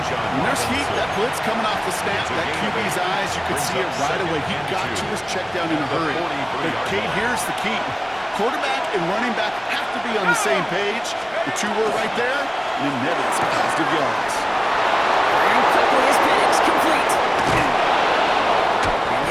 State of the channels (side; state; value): both; identical; correlation 1.00